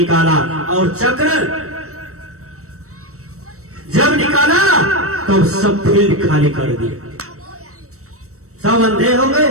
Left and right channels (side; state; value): left; late; 0.64 ms